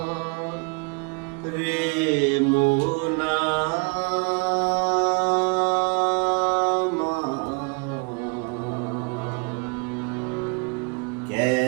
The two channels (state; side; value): quieter; left; 33.5 dB